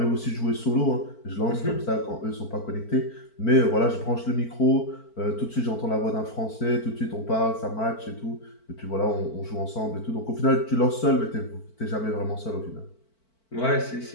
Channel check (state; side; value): late; right; 4.5 ms